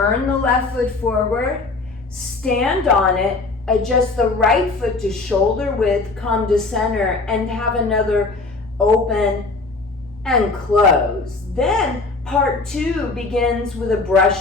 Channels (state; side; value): quieter; right; 3.6 dB